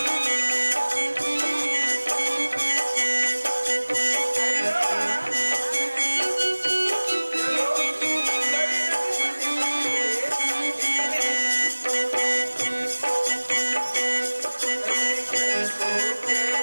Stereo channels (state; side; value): inverted; both; correlation -1.00